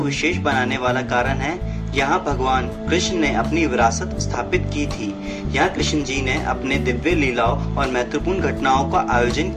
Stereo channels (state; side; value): identical; both; correlation 1.00